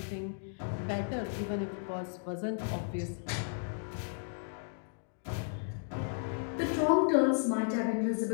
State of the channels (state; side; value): silent; right; digital silence